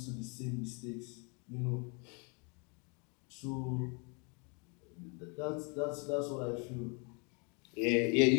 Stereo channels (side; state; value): right; quieter; 34.3 dB